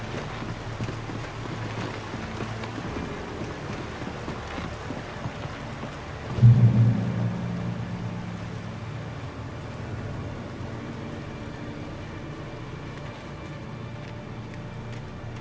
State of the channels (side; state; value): both; identical; correlation 1.00